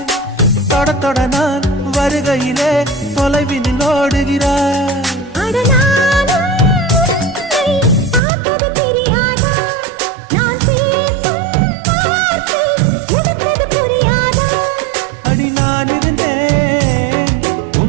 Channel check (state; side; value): drops out; left; at 8.2 s